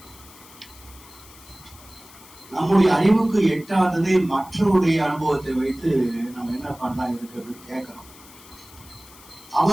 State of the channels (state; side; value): noise; left; hiss, 21 dB below the sound